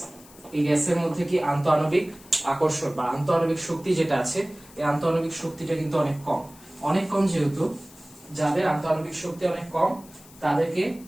এই গ্যাসের মধ্যে কি আন্তঃআণবিক আকর্ষণ বা আন্তঃআণবিক শক্তি যেটা আছে, এই আন্তঃআণবিক শক্তিটা কিন্তু অনেক কম। অনেক কম যেহেতু, যাদের আন্তঃআণবিক শক্তি অনেক কম তাদেরকে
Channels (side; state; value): left; noise; hiss, 23 dB below the sound